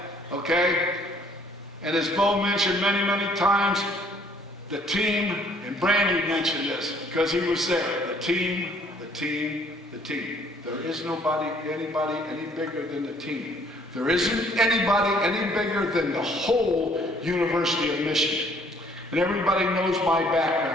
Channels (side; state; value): both; normal; correlation 0.61